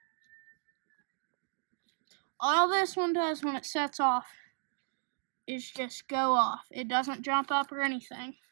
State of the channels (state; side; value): silent; left; digital silence